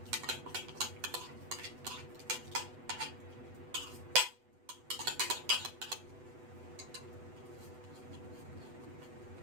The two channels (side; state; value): left; late; 8.0 ms